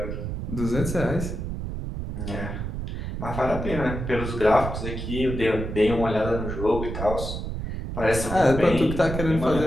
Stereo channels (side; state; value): right; noise; rumble, 5 dB below the sound